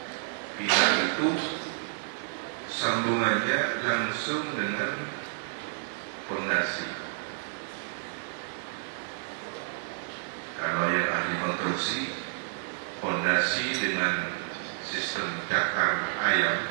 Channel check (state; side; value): silent; left; 58 dB below the other